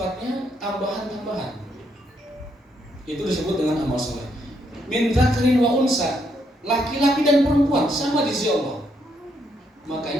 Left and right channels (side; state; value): both; normal; correlation 0.75